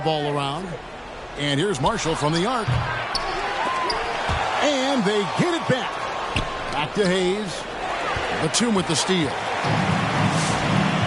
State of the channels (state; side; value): identical; both; correlation 1.00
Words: around. And here's Marshall from the arc. And they get it back. Back to Hayes. Batum with the steal.